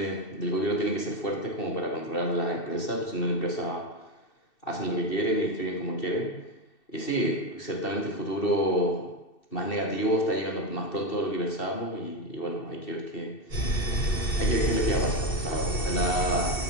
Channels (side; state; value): right; late; 2.7 ms